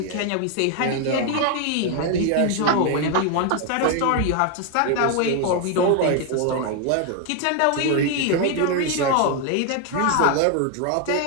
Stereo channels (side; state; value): both; different; correlation 0.01